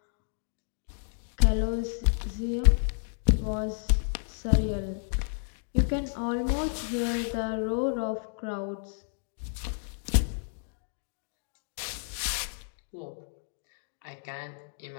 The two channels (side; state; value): right; silent; digital silence